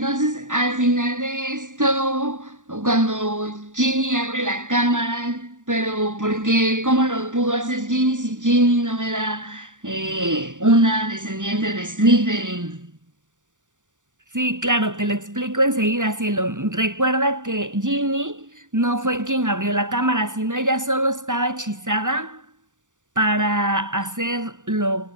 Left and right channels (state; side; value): late; left; 0.86 ms